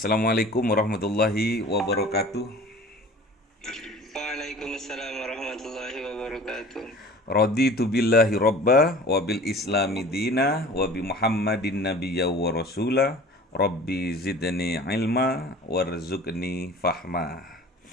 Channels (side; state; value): both; normal; correlation 0.43